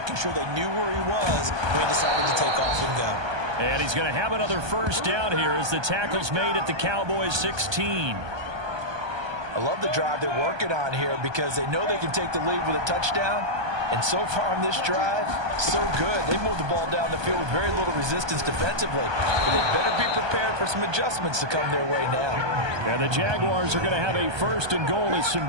sure they knew where he was when he decided to take off and go. And he's going to have another first down here as the tackle's made at the Cowboys 16. I love the drive they're working on here because they know they can take the lead with a touchdown. And so far on this drive, so good. They moved the ball down the field with very little resistance defensively. But they better be prepared for some adjustments to come their way now. And the Jaguars are going to have a 1st and goal. It's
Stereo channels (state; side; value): late; left; 1.2 ms